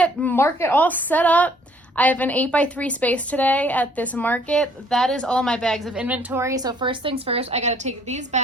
market all set up. I have an 8x3 space today at this market. That is all my bags of inventory. So first things first, I gotta take these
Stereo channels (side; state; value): both; normal; correlation 0.61